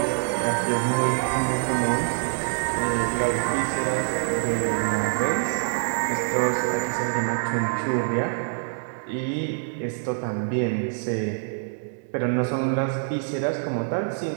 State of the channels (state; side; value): silent; left; digital silence